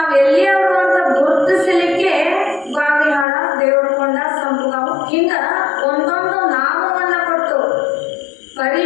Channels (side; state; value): right; drops out; at 3.2 s